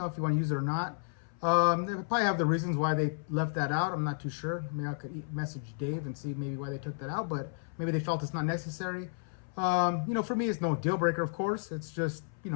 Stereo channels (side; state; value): right; silent; 56 dB below the other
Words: if you want to use it or not. They probably have the reasons why they left that out. I'm not too sure. Maybe I could message Dave and see maybe why they took that out, but maybe they felt it's not necessary. You know, for me, it's no deal breaker, of course. It's just, you